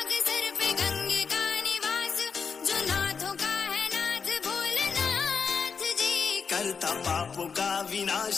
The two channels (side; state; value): right; quieter; 5.8 dB